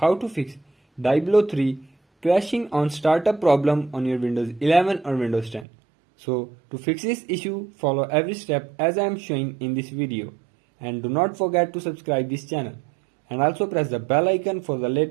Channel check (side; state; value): left; drops out; at 5.7 s